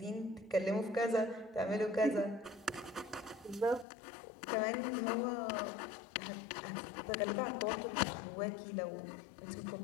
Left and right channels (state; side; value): drops out; right; at 3.9 s